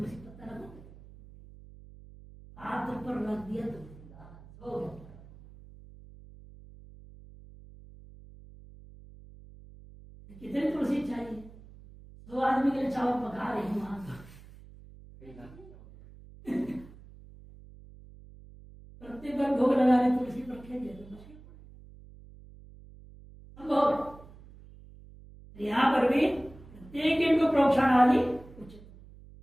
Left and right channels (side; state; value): right; noise; hum, 20 dB below the sound